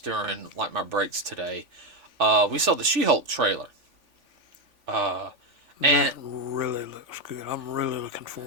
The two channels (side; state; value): left; late; 3.5 ms